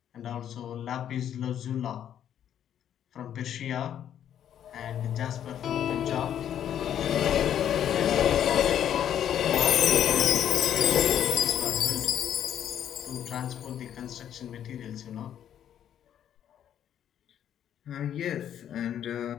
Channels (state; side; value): quieter; right; 10.0 dB